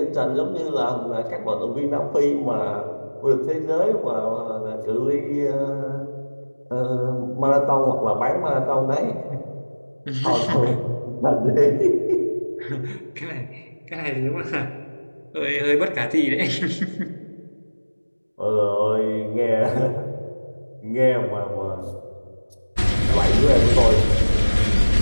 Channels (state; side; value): inverted; both; correlation -1.00